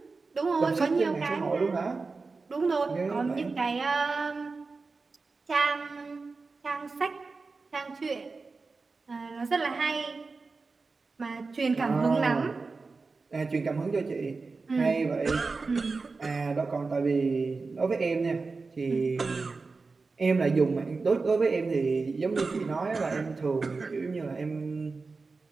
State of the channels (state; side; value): quieter; left; 4.1 dB